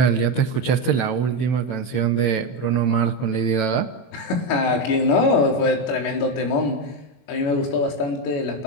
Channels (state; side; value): late; right; 24 ms